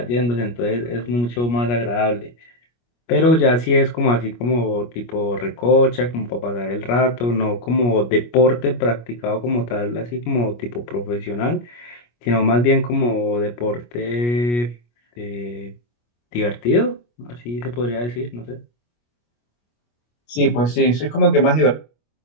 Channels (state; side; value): late; right; 25 ms